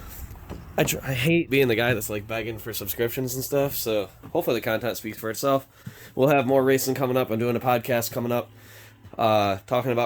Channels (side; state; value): both; identical; correlation 1.00